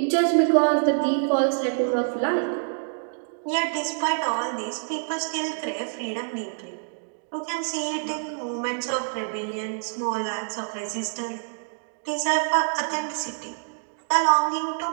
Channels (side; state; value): left; silent; digital silence